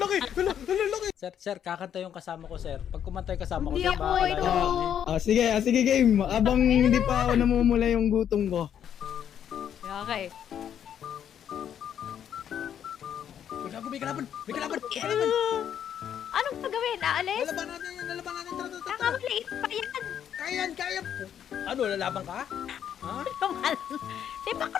Laki. Sir, kakanta yung kasama ko, sir. Pag kumanta yung kasama ko, Hindi sir, ako baka ito. Sige game. Abang hindi pa ako namumula yung gutom ko. Okay. Uy, gago, may kalaban. Anong gagawin? Aalis? Lalaban natin. Tara. Nakamaliit pa yan. Kaya. Ano, lalaban ka? Ha? Tumalon. Di ba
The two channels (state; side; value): quieter; right; 9.3 dB